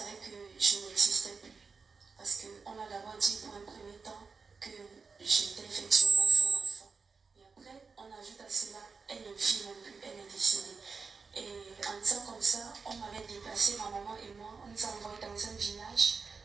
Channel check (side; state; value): left; quieter; 4.9 dB